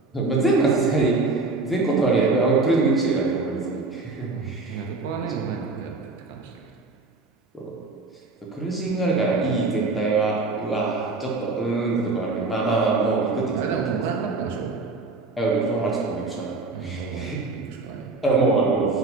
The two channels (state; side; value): quieter; left; 3.5 dB